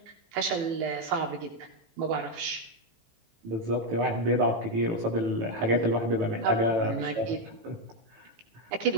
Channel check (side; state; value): left; late; 18 ms